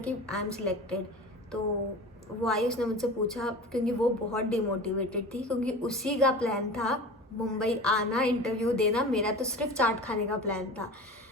आई एम सिलेक्टेड। तो वो आई, उसने मुझसे पूछा, क्योंकि वो बहुत डिमोटिवेटेड थी, क्योंकि उसी का प्लान था मुंबई आना, इंटरव्यू देना। मेरा तो सिर्फ चाट खाने का प्लान था,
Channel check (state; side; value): normal; both; correlation 0.34